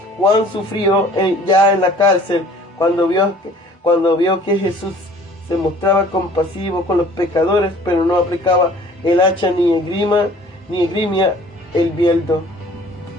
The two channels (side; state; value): both; normal; correlation 0.51